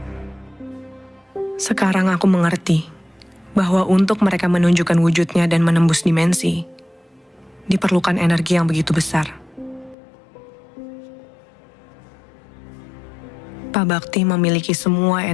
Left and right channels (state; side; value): drops out; right; at 10.0 s